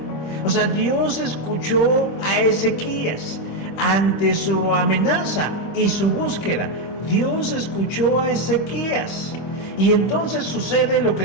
O sea, Dios escuchó a Ezequías ante su amenaza y su búsqueda. Dios escuchó a Ezequías. Y entonces sucede lo que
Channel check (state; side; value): late; right; 25 ms